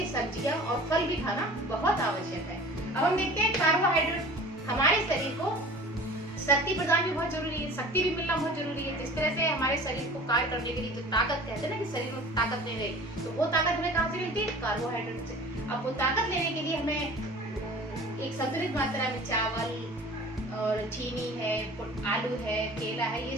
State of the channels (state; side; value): normal; both; correlation 0.42